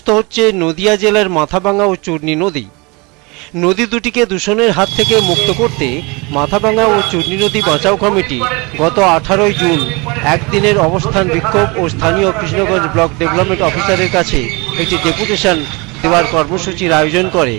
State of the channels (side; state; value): left; quieter; 27.5 dB